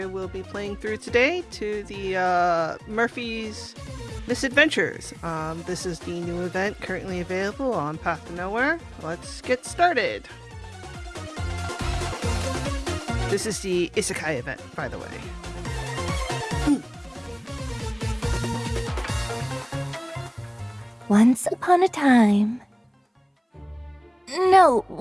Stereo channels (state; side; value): identical; both; correlation 1.00